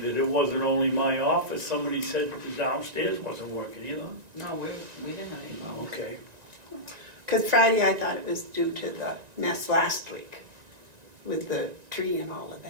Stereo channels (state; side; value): late; left; 1.9 ms